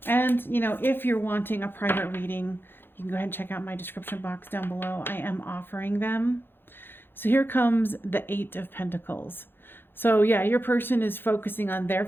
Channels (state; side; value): late; right; 0.10 ms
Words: and, you know, if you're wanting a private reading, you can go ahead and check out my description box down below. I am offering them. So here comes the Eight of Pentacles. So yeah, your person is focusing on their